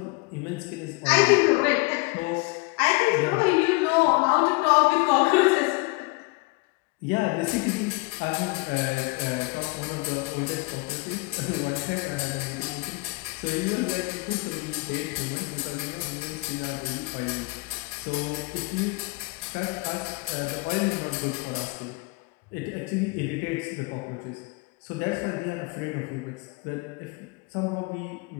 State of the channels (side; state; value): right; quieter; 26.5 dB